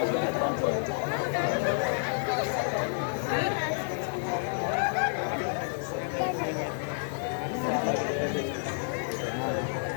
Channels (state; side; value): silent; right; digital silence